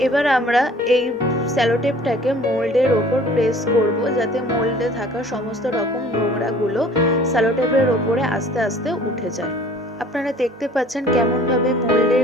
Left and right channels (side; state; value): both; normal; correlation 0.51